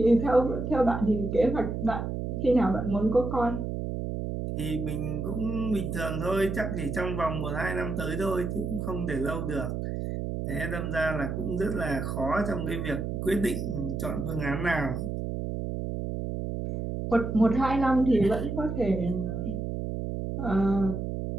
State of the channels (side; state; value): right; noise; hum, 3 dB below the sound